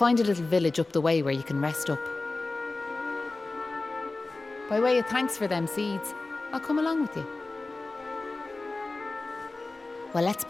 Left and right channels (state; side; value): quieter; right; 3.3 dB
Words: a little village up the way where you can rest up. By way of thanks for them seeds, I'll come along with you. Well, let's